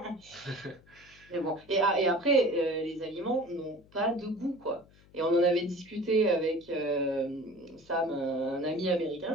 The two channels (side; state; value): left; noise; hum, 27 dB below the sound